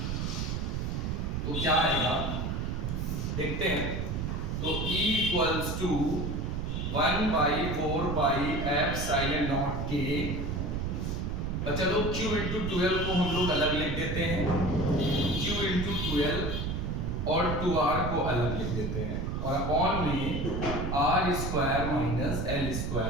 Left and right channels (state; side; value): noise; right; rumble, 2 dB below the sound